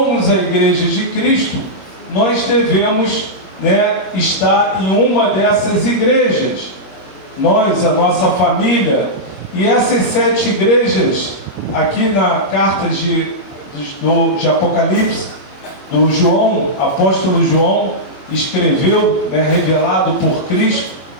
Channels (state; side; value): late; right; 21 ms